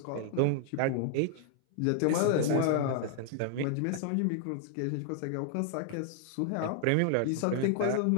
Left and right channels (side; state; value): both; different; correlation 0.00